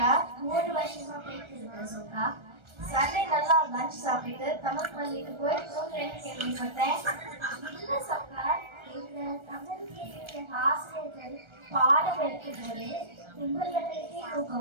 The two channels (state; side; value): late; left; 1.3 ms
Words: 3 வருஷமா போயிட்டு இருக்கேன் சக்கா. சண்டே நல்லா லஞ்ச் சாப்பிட்டு தமிழ் பள்ளிக்கு போய் தூங்குறேன்னு கேள்விப்பட்டேன். இல்ல சக்கா, இந்த தமிழுக்கு ஆசிரியர்கள் பாடம் எடுக்கும் போது உங்களுக்கு